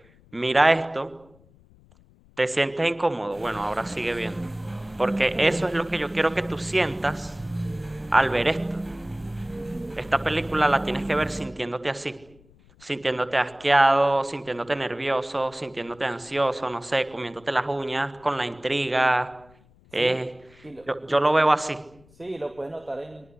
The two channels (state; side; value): noise; left; rumble, 28 dB below the sound